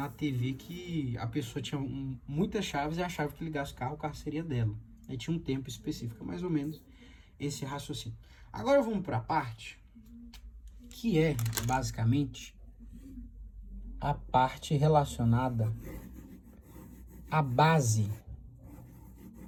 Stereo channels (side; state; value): both; identical; correlation 1.00